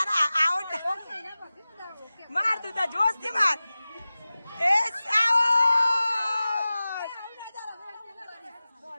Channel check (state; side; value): inverted; both; correlation -0.97